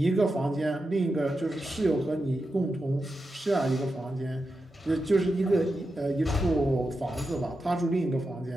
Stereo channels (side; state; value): both; normal; correlation 0.89